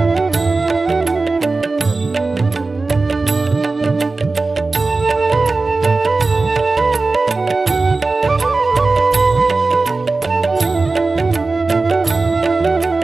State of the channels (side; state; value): left; quieter; 3.6 dB